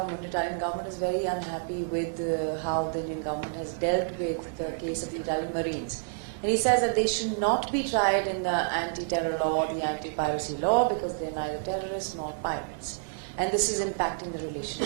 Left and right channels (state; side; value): silent; left; digital silence